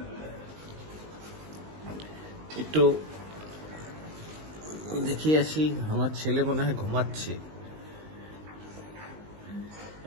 একটু দেখিয়ে আসি, আমার ছেলে মনে হয় ঘুমাচ্ছে।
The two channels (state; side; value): late; left; 19 ms